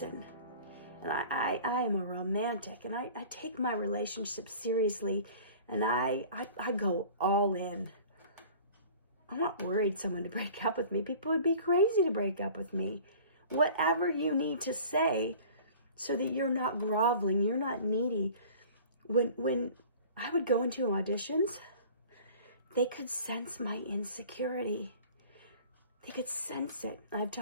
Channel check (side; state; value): both; inverted; correlation -0.44